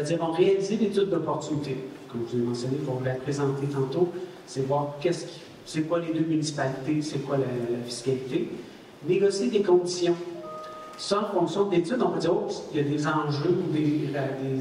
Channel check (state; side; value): identical; both; correlation 1.00